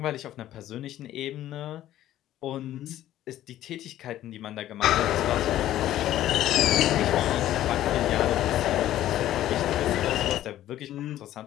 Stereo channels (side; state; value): right; quieter; 13.2 dB